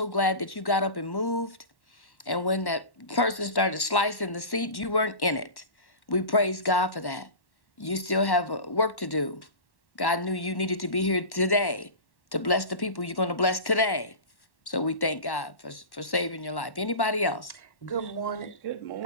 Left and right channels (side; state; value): right; late; 1.1 ms